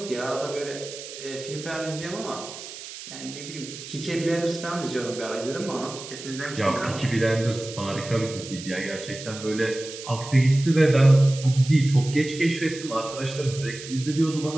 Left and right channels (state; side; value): noise; right; hiss, 12 dB below the sound